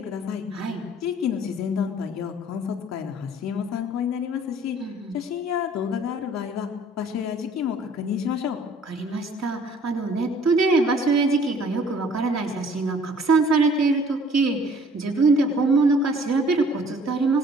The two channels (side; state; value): both; normal; correlation 0.55